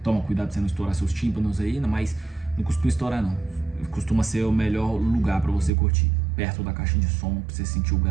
Toma cuidado pra você não estourar seus tímpanos aí, mas não costuma estourar não, costuma ser o melhor lugar pra você curtir, perto da caixa de som, pra você sentir o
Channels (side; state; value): left; drops out; at 5.7 s